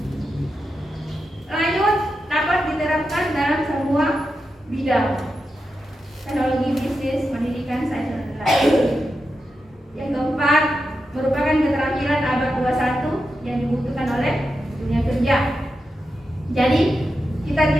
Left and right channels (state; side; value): normal; both; correlation 0.88